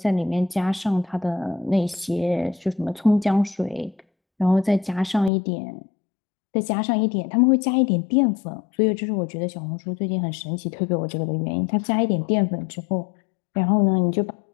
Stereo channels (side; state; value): right; drops out; at 5.3 s